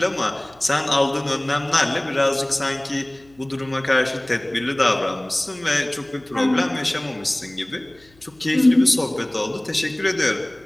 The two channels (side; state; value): left; noise; hum, 30 dB below the sound